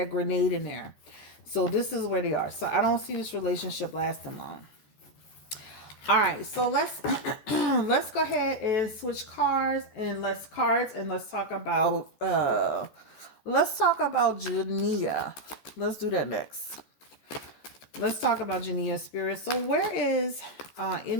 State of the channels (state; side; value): late; right; 14 ms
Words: there. So this is where they are. So I don't see this relationship lasting long. All right, so let's let's go ahead and switch cards and let's talk about Jania. Let's do that next. Let's talk about Jania Spirit. So where is